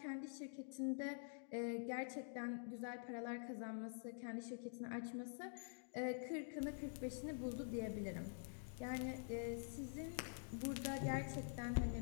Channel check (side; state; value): right; silent; digital silence